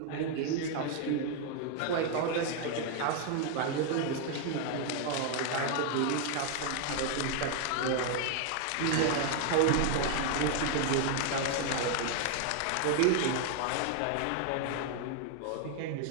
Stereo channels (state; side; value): different; both; correlation 0.00